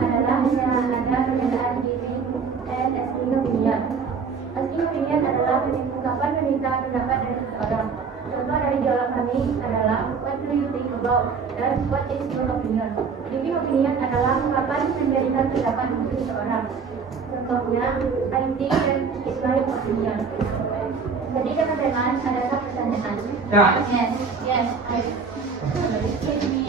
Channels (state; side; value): quieter; left; 5.4 dB